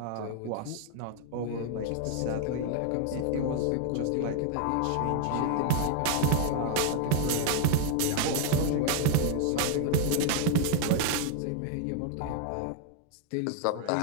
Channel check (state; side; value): different; both; correlation 0.00